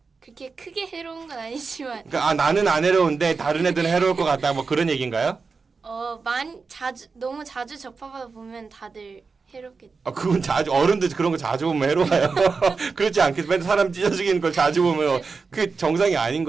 그렇게 크게 해로운 건 아니지만. 그러니까 나는 안 해로운데 다른 애들은 해로울 것 같다. 뭐 그런 얘기인가요? 너무 자주 접하다 보면 다들 해롭겠죠. 그건 어른들 그런 거 자주 보면 해로워요. 그렇지 않겠어. 맨날 사람 찢어 죽이는 걸 자주 보면 그 정상이 아닌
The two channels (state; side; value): quieter; left; 4.7 dB